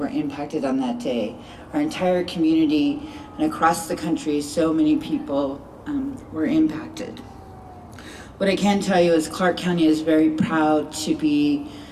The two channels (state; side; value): identical; both; correlation 1.00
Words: impacted on that day. Our entire community and across the country, so many people were impacted. What I can tell you is Clark County is very proud to be